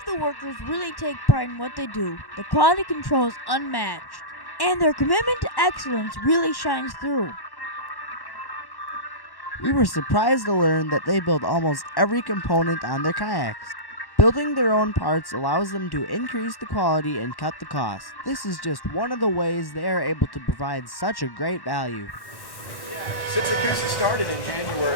the workers really take pride in what they do. The quality control is unmatched, and their commitment to excellence really shines through. We were surprised to learn that they build almost every component on their kayaks. Building their own parts allows them to increase the quality and cut the cost. This is just one of the ways they are able to provide such a great value. Since the Coosa started in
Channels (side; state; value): right; late; 1.1 ms